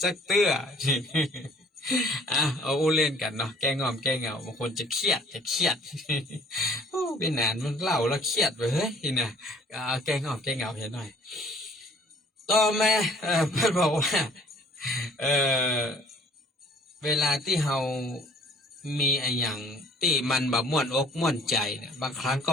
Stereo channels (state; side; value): normal; both; correlation 0.55